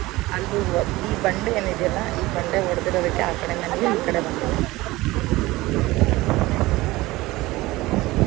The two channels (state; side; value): quieter; left; 19.5 dB